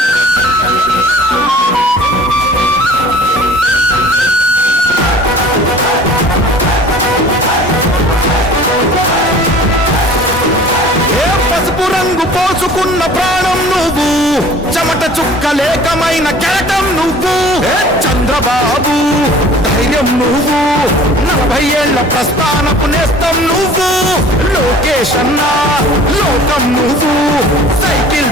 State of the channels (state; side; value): normal; both; correlation 0.47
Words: పసుపు రంగు పోసుకున్న ప్రాణం నువ్వు, చెమట చుక్కలేకమైన కెరటం నువ్వు. చంద్రబాబు ధైర్యం నువ్వు, 40 ఏళ్ల ప్రస్థానపు నేస్తం నువ్వు. లోకేష్ అన్నా లోకం నువ్వు, సైకిల్